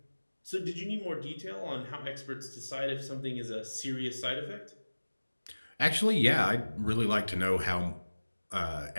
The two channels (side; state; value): both; inverted; correlation -1.00